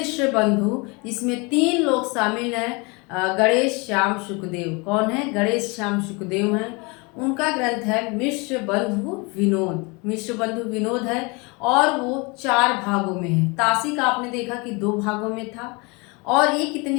बंधु, जिसमें 3 लोग शामिल हैं। गणेश श्याम शुकदेव। कौन है? गणेश श्याम शुकदेव हैं। उनका ग्रंथ है मिश्र बंधु विनोद। मिश्र बंधु विनोद है और वो 4 भागों में है। तासी का आपने देखा कि 2 भागों में था, और ये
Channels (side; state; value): right; quieter; 28.5 dB